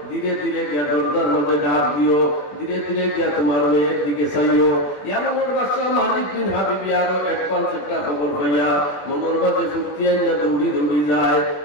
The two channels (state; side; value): late; right; 21 ms